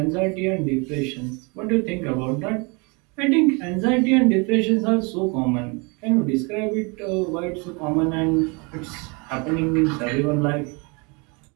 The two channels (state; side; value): quieter; left; 30.5 dB